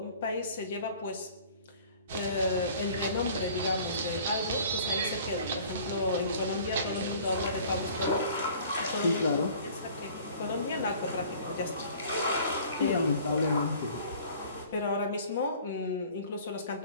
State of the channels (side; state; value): both; inverted; correlation -0.49